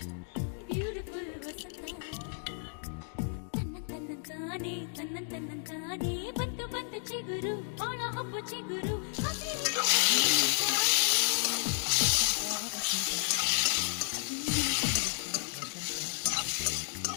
ಬ್ಯೂಟಿಫುಲ್ ವಸಂತ ತನ್ನಂತಾನೆ ಬಂತು ಬಂತು ಚಿಗುರು ಬಾಳ ಹಬ್ಬ ಚಿಗುರು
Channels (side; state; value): right; silent; digital silence